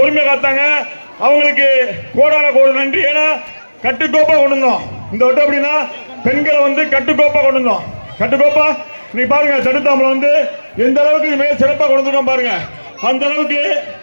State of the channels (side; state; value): both; inverted; correlation -1.00